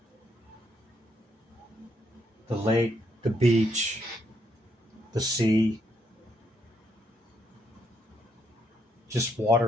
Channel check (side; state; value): both; normal; correlation 0.75